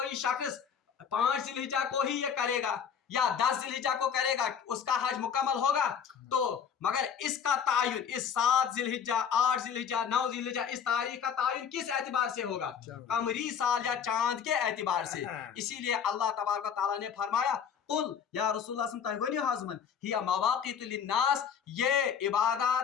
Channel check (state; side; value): quieter; right; 7.6 dB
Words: شخص 5 ذی الحجہ کو ہی یہ کرے گا یا 10 ذی الحجہ کو کرے گا اس کا حج مکمل ہوگا. تو مگر اس کا تعین اس 7 ذی الحجہ 8 ذی الحجہ 9 ذی الحجہ اس تاریخ کا تعین کس اعتبار سے ہوگا؟ قمری سال یا چاند کے اعتبار سے. اسی لیے اللہ تبارک و تعالیٰ نے فرمایا قل یا رسول اللہ صلی اللہ علیہ وسلم حضمن ہی مواقیت للناس، یہ